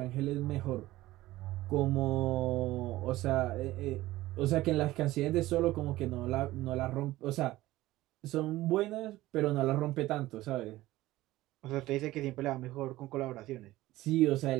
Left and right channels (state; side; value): quieter; left; 17.0 dB